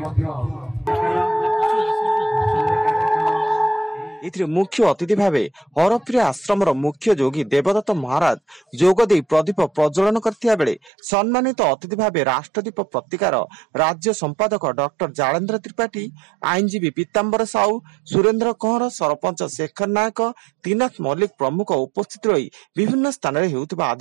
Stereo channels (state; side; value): drops out; left; at 10.9 s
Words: मुख्य अतिथि भाव हरप्रिय आश्रम मुख्य जोगी देवदत्त महाराज जोगदे प्रदीप प्रज्वलन करथिया बेले सम्मानित अतिथि भाव राष्ट्रदीप पत्रिकार राज्य संपादक डॉक्टर जालेन्द्र त्रिपाठी, आईनजीवी पीताम्बर साहू, सुरेन्द्र कंवर, सरपंच शेखर नायक, त्रिनाथ मल्लिक प्रमुख उपस्थित रही विभिन्न स्थान में हेउथिबा